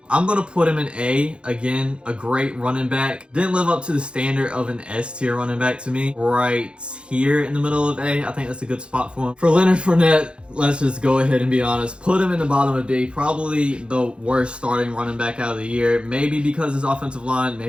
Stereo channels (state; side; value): late; left; 0.056 ms